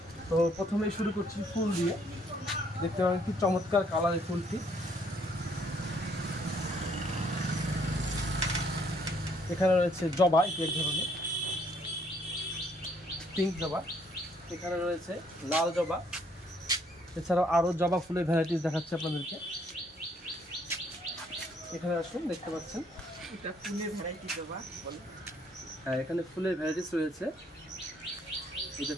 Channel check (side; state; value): both; normal; correlation 0.66